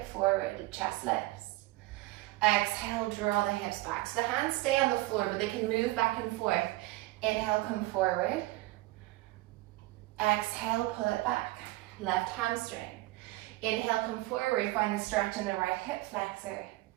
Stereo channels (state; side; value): quieter; left; 19.3 dB